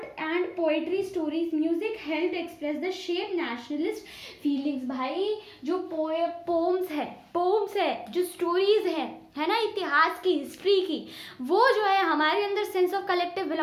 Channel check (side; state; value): both; identical; correlation 1.00